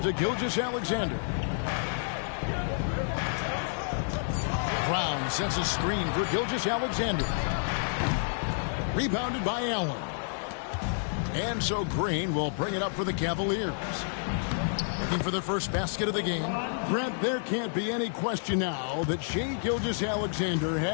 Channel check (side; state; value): right; silent; 58 dB below the other